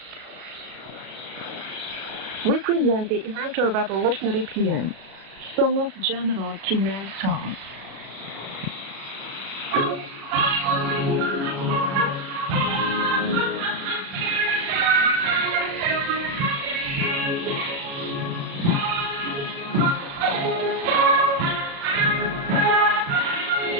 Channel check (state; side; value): late; left; 36 ms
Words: We present the immortal revolutionary paean, Song of General Kim Il-sung.